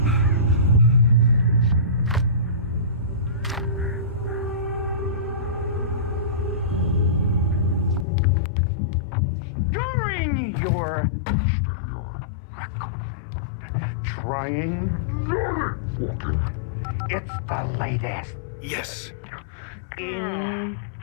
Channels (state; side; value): drops out; right; at 8.1 s